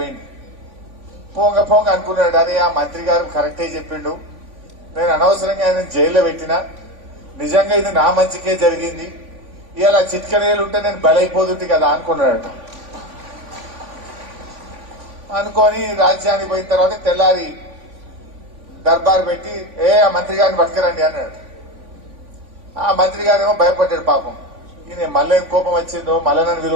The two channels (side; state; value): left; late; 3.5 ms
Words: పోంగ పోంగ అనుకున్నాడు, అరే ఆ మంత్రి గారు కరెక్టే చెప్పిండు, నేను అనవసరంగా ఆయన జైల్లో పెట్టినా, నిజంగా ఇది నా మంచికే జరిగింది, ఇలా చిట్కనేలు ఉంటే నేను బలైపోతుంది కదా అనుకున్నాడట. అనుకొని రాజ్యానికి పోయిన తర్వాత తెల్లారి దర్బార్ పెట్టి ఆ మంత్రి గారిని పట్టుకురండి అన్నాడు. ఆ మంత్రి గారేమో భయపడ్డాడు. పాపం ఈయన మళ్ళీ ఏం కోపం వచ్చిందో, మళ్ళీ నన్ను